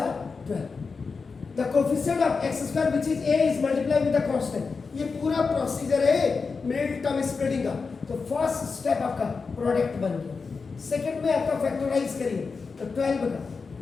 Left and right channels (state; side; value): quieter; right; 4.8 dB